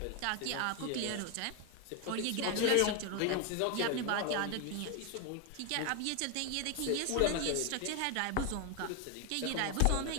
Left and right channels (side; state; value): both; different; correlation 0.01